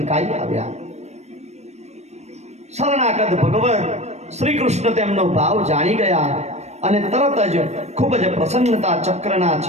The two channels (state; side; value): late; left; 0.32 ms